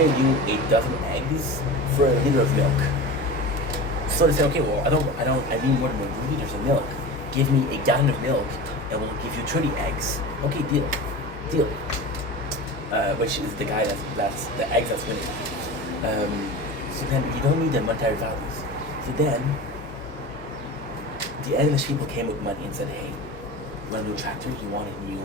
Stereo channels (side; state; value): both; normal; correlation 0.31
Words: you 8 dozen eggs for a liter of milk. So they say, okay, well, I need more than 1 liters of milk. Give me a gallon of milk, and we'll give you 30 eggs. Okay, deal. Which is the guy that's the eggs that's winning. So then you don't need the monetary values. So then the English people came with money and said, hey, you want a new tractor? You